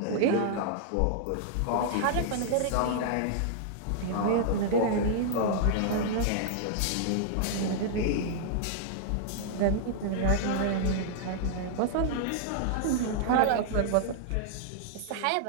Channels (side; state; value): both; different; correlation -0.01